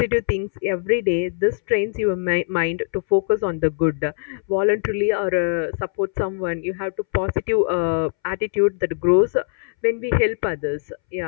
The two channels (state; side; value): silent; right; 64 dB below the other